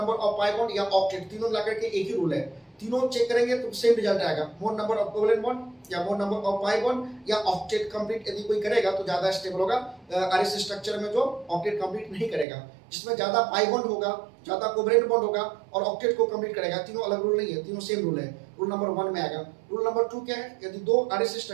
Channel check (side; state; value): left; drops out; at 12.5 s